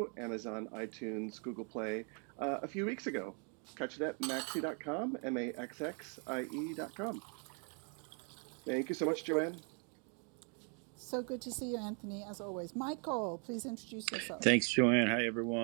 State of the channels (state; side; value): quieter; left; 39.4 dB